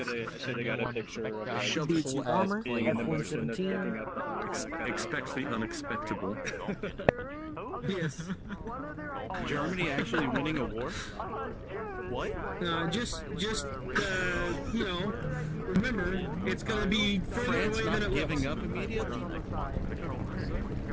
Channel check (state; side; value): identical; both; correlation 1.00